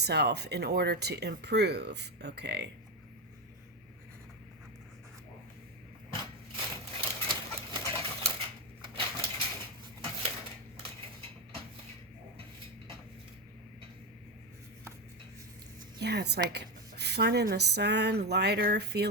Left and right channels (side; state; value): both; normal; correlation 0.12